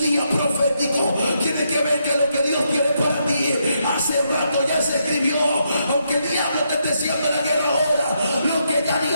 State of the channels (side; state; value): both; inverted; correlation -0.79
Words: día profético, tiene que ver que lo que Dios tiene para ti hace rato ya se escribió. Aunque el diablo te esté haciendo la guerra ahora, lo que ya